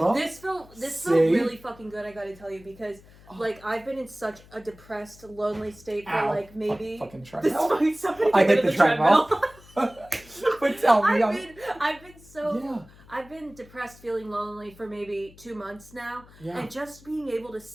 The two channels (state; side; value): noise; left; hum, 23 dB below the sound